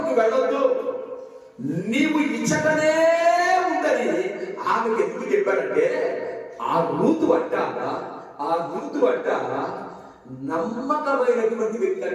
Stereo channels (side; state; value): both; identical; correlation 1.00